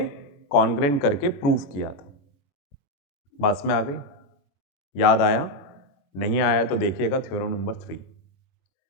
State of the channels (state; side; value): late; right; 21 ms